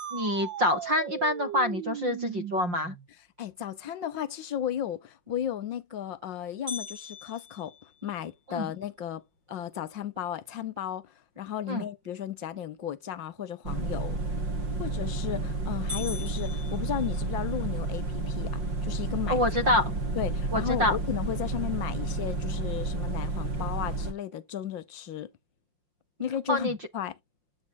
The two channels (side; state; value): left; late; 5.6 ms